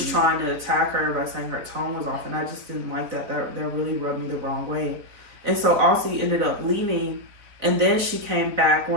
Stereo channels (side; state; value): left; late; 4.0 ms